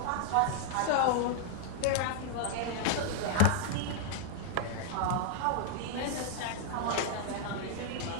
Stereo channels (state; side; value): different; both; correlation 0.00